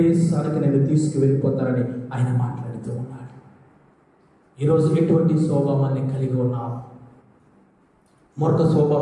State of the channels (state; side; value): identical; both; correlation 1.00